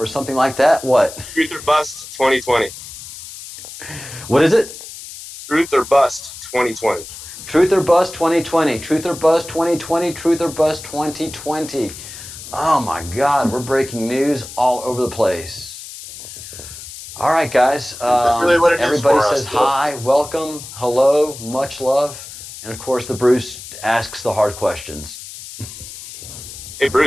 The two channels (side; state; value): left; noise; hiss, 13 dB below the sound